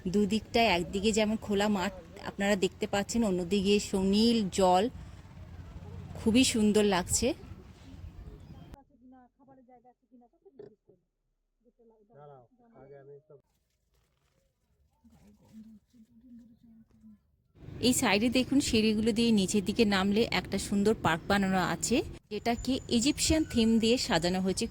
দুদিকটায়, একদিকে যেমন খোলা মাঠ আপনারা দেখতে পাচ্ছেন, অন্যদিকে সুনীল জল, খুবই সুন্দর লাগছে। এই সাইডে দেখুন সিঁড়িগুলো দিয়ে নিচের দিকে নামলে একটা সুন্দর পার্ক বানানো আছে, যেটাকে ইজিপশিয়ান থিম দিয়ে সাজানো হয়েছে,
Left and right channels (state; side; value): identical; both; correlation 1.00